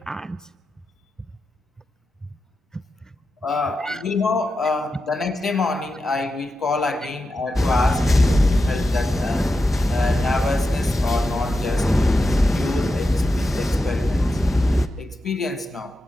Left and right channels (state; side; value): normal; both; correlation 0.89